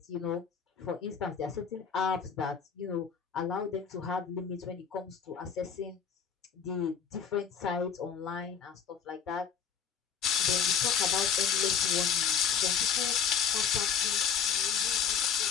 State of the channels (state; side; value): quieter; right; 7.2 dB